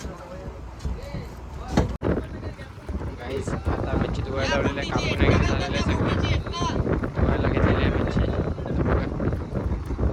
गाईस आता मच्छी धुवायला लावलेलं आहे. कापून वगैरे झालेलं आहे सगळं. धुवायला घेतलेली आहे मच्छी. आता बघा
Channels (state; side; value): identical; both; correlation 1.00